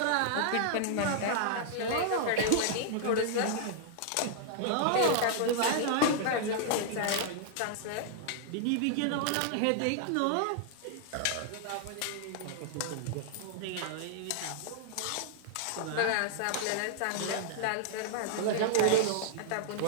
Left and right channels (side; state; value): both; different; correlation -0.01